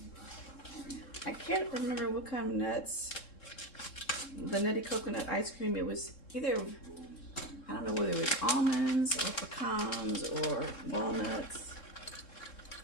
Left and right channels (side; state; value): right; late; 3.7 ms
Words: I can't remember what kind of nuts. The nutty coconut ice cream, it was either, I don't know whether it was almonds or pecans or walnuts.